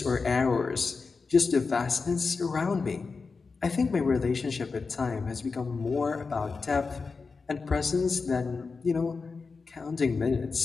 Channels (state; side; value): quieter; right; 4.6 dB